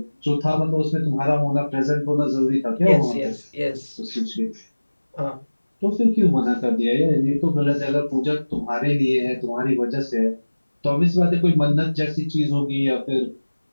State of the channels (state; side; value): inverted; both; correlation -1.00